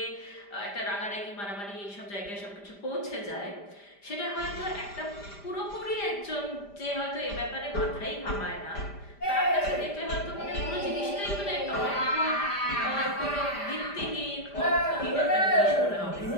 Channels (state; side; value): late; right; 5.0 ms